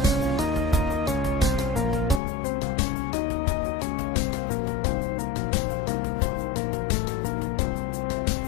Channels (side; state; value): right; drops out; at 2.2 s